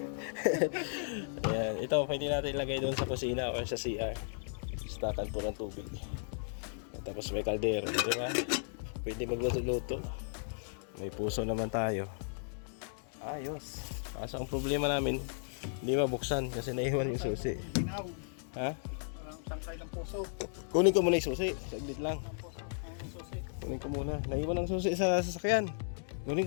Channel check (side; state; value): right; silent; digital silence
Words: Ayan. Ito, pwede natin ilagay doon sa kusina o sa CR. Stakan po ng tubig. Tapos may kaldero, di ba? Pwede magluto-luto. May puso naman tayo. Ayos. Kaso ang problema namin, hindi mabuksan kasi naiwan yung susi. Ginaw. Ha? Parang tangkay ng puso. Kunin ko muna yung susi. Saglit lang. Ang susi. Kunin ko muna. Naiwan ang susi sa sasakyan. Kunin